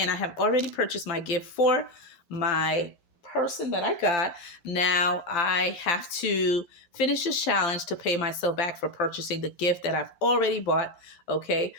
I have already purchased my gift for my person that I got. Now I have to finish this challenge to pay myself back for purchasing the gift that I've already bought. Okay.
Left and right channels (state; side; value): late; right; 12 ms